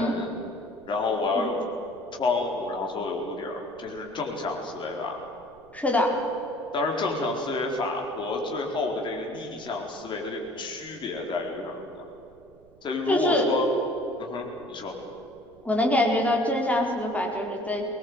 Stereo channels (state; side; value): noise; right; rumble, 26 dB below the sound